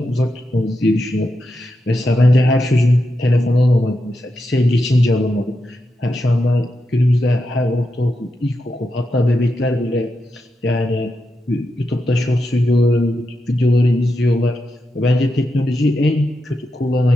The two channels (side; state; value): both; normal; correlation 0.87